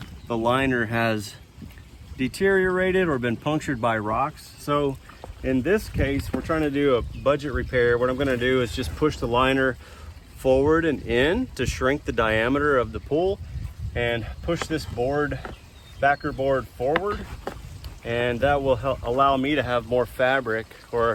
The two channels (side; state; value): both; identical; correlation 1.00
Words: the liner has deteriorated or been punctured by rocks. So in this case, we're trying to do a budget repair. What I'm going to do is just push the liner forward and in to shrink the diameter of the pool, and push this backer board forward, and that will allow me to have more fabric,